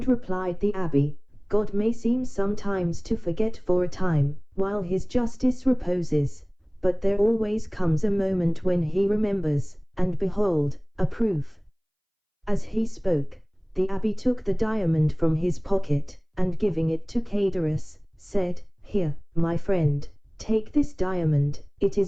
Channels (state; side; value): identical; both; correlation 1.00